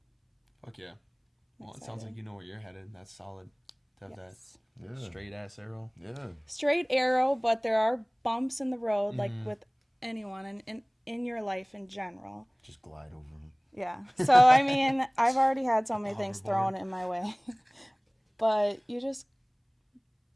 Fuck yeah. Well, it sounds Excited. like you know where you're headed. That's solid. To have Yes. that Yeah. straight ass arrow. Yeah. Straight arrow, but there are bumps in the road, like with anyone and in your life in general. Just glide over them. Yeah. So, I mean, I've already had so many things Hoverboard. thrown in my way. But you just,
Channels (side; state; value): both; identical; correlation 1.00